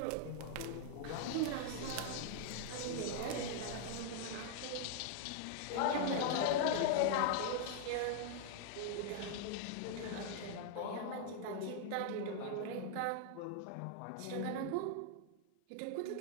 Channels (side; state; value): both; different; correlation 0.00